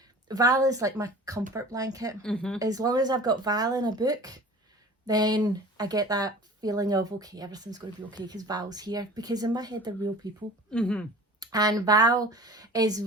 Val is like my comfort blanket. Mm-hmm. As long as I've got Val in a book, then I get that feeling of, okay, everything's going to be okay because Val's here. Because in my head, they're real people. Mm-hmm. And Val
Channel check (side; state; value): both; normal; correlation 0.42